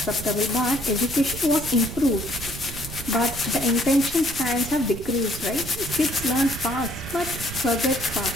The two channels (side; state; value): right; noise; rumble, 10 dB below the sound